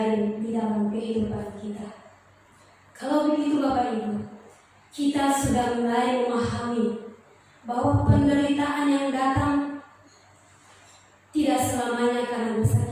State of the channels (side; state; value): both; identical; correlation 1.00